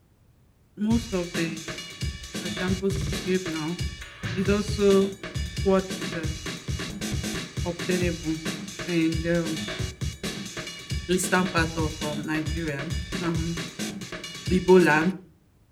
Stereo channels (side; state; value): both; identical; correlation 1.00